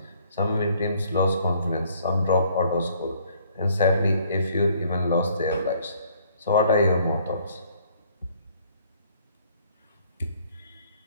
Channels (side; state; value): both; inverted; correlation -0.62